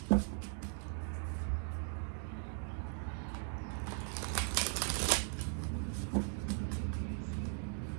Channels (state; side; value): silent; left; 52 dB below the other